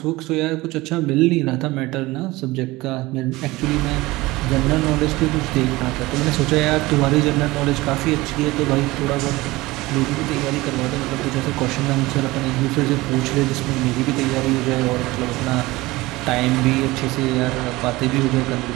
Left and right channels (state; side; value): quieter; left; 20.2 dB